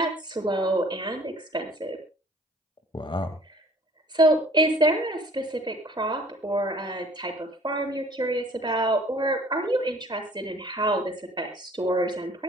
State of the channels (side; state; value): both; normal; correlation 0.53